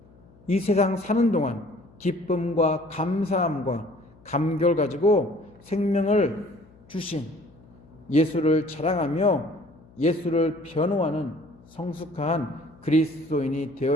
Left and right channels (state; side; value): noise; left; hum, 26 dB below the sound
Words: 이 세상 사는 동안 기쁨과 감사함과 감격을 가지고 생명을 주신 예수를 자랑하며 예수를 변호하는 성숙한 그리스도인이